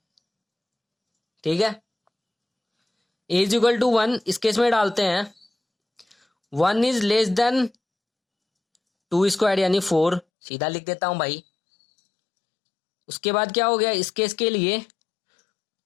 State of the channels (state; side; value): drops out; right; at 10.2 s